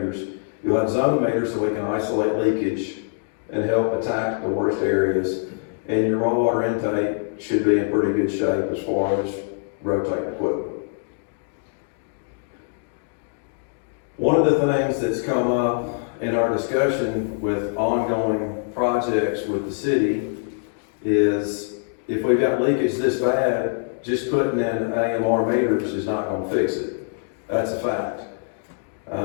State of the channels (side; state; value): right; silent; digital silence